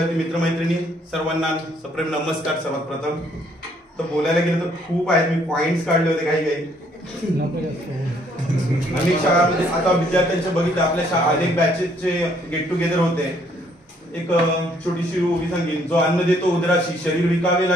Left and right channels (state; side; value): normal; both; correlation 0.66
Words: मित्रमैत्रिणी सर्वांना सप्रेम नमस्कार. सर्वात प्रथम तर बोलायला गेलं तर खूप आहेत. मी पॉइंट्स काढले होते काही अनेक शाळांमध्ये. आता विद्यार्थ्यांच्या बघितलं आपल्या अनेक बॅचेसचे गेट टुगेदर होते. एक छोटीशी उभी सांगेन, जो अन्न देतो उदराशी शरीर विकावे